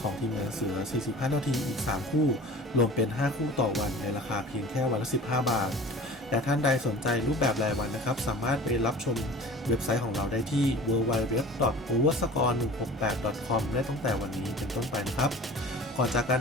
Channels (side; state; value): both; normal; correlation 0.41